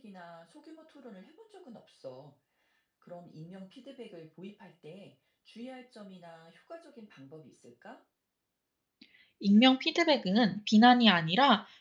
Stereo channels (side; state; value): both; identical; correlation 1.00